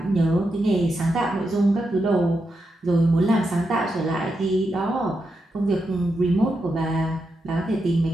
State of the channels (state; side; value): normal; both; correlation 0.86